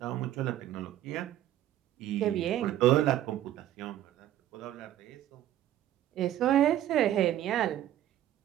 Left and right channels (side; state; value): left; quieter; 12.5 dB